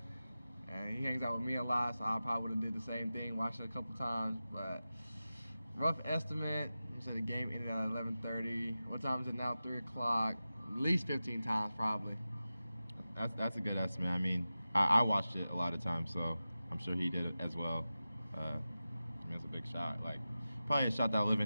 and he hangs out with me a lot, so I probably would have did the same thing, watched it a couple times. But rough estimate, so the game ended at 11:30. What time is it now? 3 o'clock. At least 15 times, probably. That's a good estimate. I mean, I watched it a lot of times, so I'm sure he did it as well. That's a big shot. Like, probably a shot that'll live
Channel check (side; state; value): both; inverted; correlation -0.94